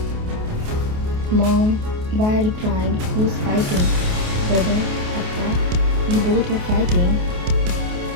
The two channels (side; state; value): left; late; 28 ms